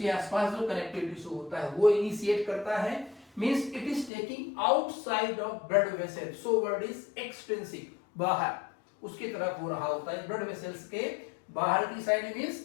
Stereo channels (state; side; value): drops out; right; at 4.1 s